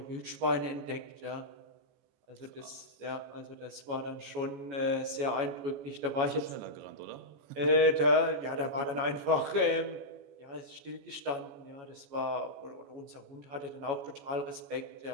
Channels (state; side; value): late; left; 14 ms